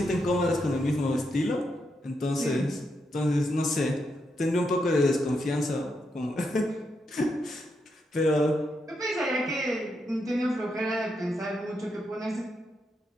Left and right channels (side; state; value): both; normal; correlation 0.82